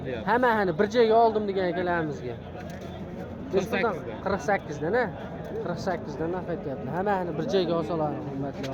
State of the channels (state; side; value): identical; both; correlation 1.00